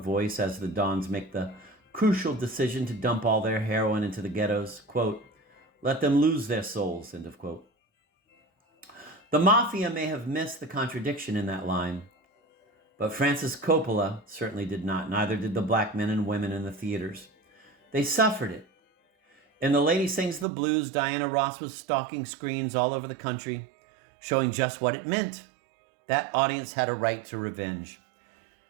as the Dons make the crucial decision to dump all their heroin into the ghettos. Quote, "Let them lose their souls," end of quote. The Mafia may have missed the contradiction in that line, But Francis Coppola certainly did not. Neither did the black men and women in the theaters. They suffered it. In The Lady Sings the Blues, Diana Ross was stalking screens all over the country, showing just what it meant. That audience had a right to revenge.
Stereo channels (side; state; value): left; drops out; at 20.5 s